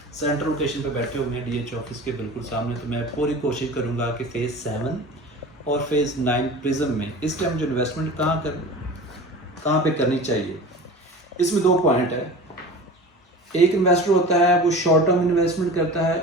सेंट्रल लोकेशन पे बैठे हुए हैं DH ऑफिस के बिल्कुल सामने, तो मैं पूरी कोशिश करूँगा कि फ़ेज़ 7 और फ़ेज़ 9 प्रिज्म में इस टाइम जो इन्वेस्टमेंट कहाँ पे करनी चाहिए। इसमें दो पॉइंट है। एक इन्वेस्टर होता है वो शॉर्ट टर्म इन्वेस्टमेंट करता है,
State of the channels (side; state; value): both; normal; correlation 0.36